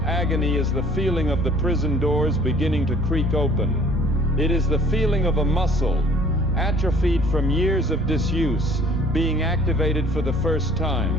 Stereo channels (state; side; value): normal; both; correlation 0.54